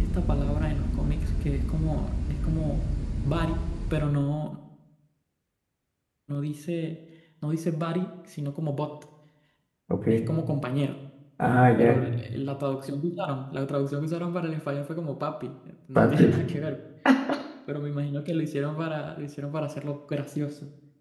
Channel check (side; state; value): both; identical; correlation 1.00